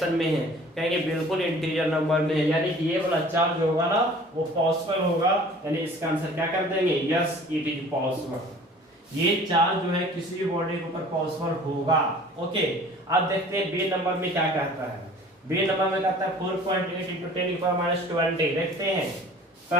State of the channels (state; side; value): normal; both; correlation 0.47